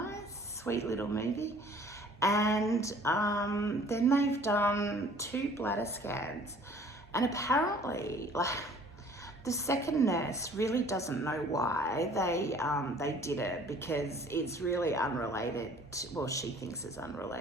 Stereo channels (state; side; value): normal; both; correlation 0.53